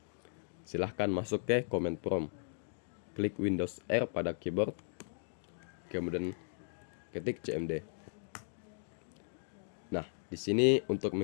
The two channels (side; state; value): right; silent; digital silence